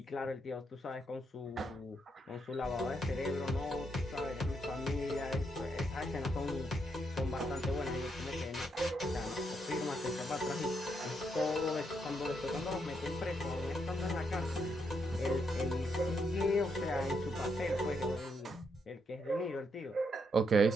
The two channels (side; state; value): both; normal; correlation 0.78